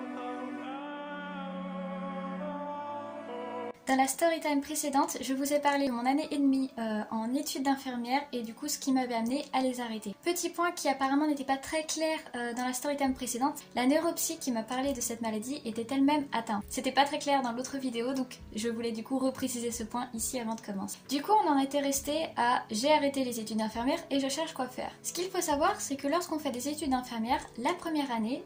Dans la storytime précédente, je vous ai parlé de mon année et demie en études d'infirmière et du coup ce qui m'avait amené à les arrêter. Petit point qui apparemment n'était pas très clair dans la storytime précédente, la neuropsy qui m'a parlé de cette maladie était elle-même atteinte. C'était pas très clair dans l'autre vidéo donc je voulais du coup repréciser ce point ici avant de commencer. Du coup on en était resté à j'ai arrêté les études d'infirmière et je cherche quoi faire. Ce qu'il faut savoir c'est que lorsqu'on fait des études d'infirmière, la première année,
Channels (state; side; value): identical; both; correlation 1.00